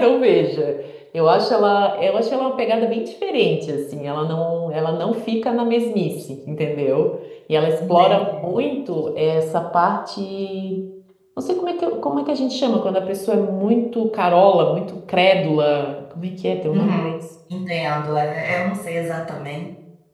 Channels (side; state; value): both; identical; correlation 1.00